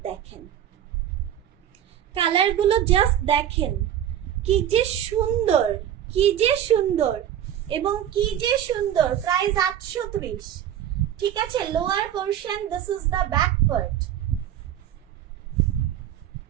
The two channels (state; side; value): quieter; left; 10.7 dB